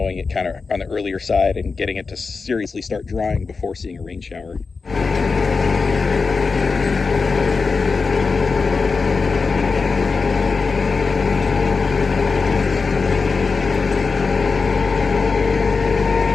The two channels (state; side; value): quieter; right; 4.6 dB